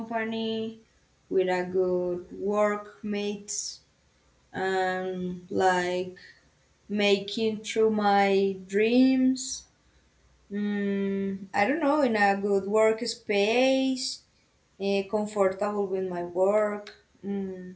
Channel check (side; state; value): both; identical; correlation 1.00